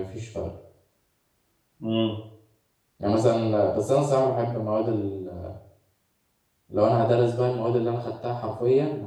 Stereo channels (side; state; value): both; identical; correlation 1.00